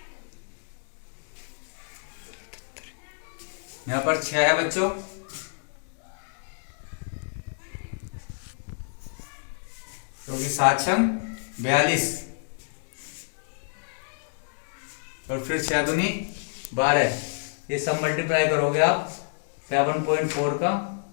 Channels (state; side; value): silent; right; digital silence